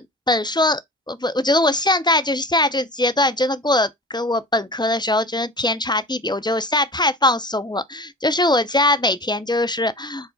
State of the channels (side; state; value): both; normal; correlation 0.36